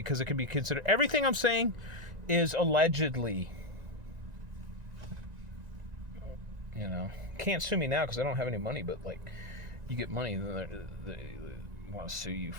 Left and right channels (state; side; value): late; left; 1.9 ms